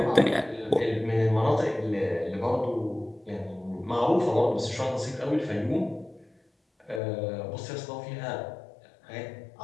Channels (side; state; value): right; drops out; at 7.0 s